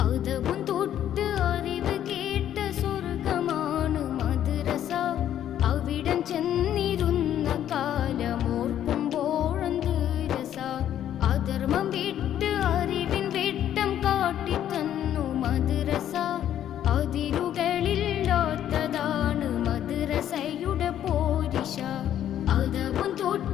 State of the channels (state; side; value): quieter; right; 10.9 dB